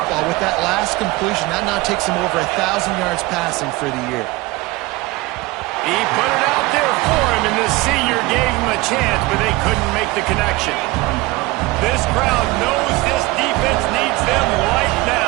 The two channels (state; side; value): quieter; left; 21.0 dB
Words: With that last completion, that now takes him over 1,000 yards passing for the year. He put it out there for him, and the senior gave him a chance, but they couldn't make the connection. This crowd knows this defense needs them right